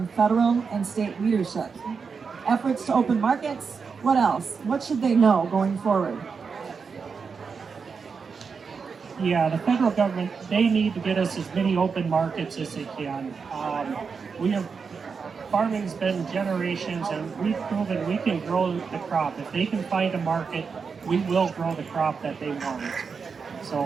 federal and state leadership? Efforts to open markets? What else? What should they know going forward? Yeah, the federal government, they need to get us as many open markets as they can. Farming's been generations, and we've proven we can grow the crop. If they can find a market, we will grow the crop that they want.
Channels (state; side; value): quieter; left; 5.5 dB